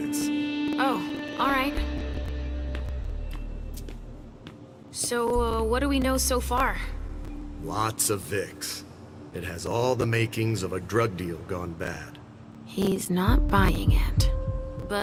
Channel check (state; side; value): identical; both; correlation 1.00